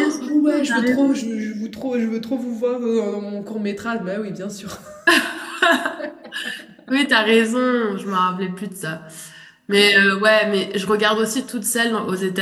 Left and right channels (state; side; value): identical; both; correlation 1.00